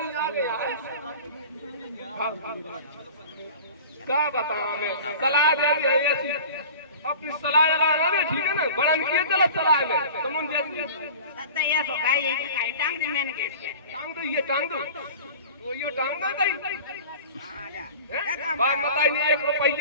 क्या बताऊं मैं? सलाह दे दी है ऐसी अपनी सलाह लगा दे, ठीक है ना? बड़ा किए चलो सलाह में तुम दादा ये सो का ये का टांग दे मेन गेट पे टांग दो, ये टांग दो, तो ये टांग दो ताई बात बताई नहीं, 1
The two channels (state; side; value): inverted; both; correlation -0.39